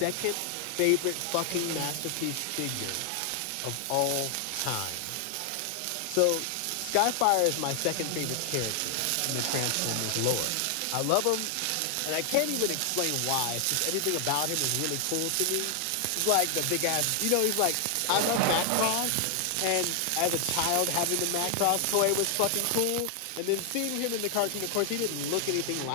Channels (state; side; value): different; both; correlation 0.00